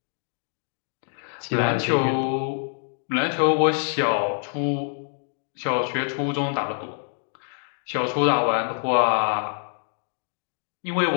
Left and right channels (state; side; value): silent; right; digital silence